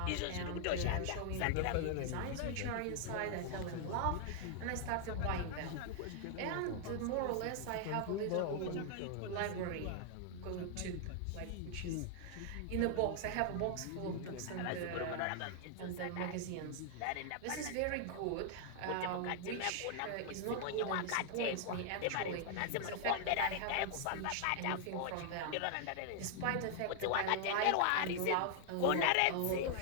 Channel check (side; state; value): both; different; correlation 0.00